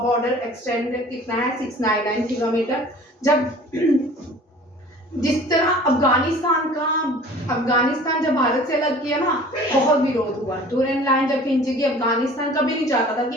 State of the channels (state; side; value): normal; both; correlation 0.46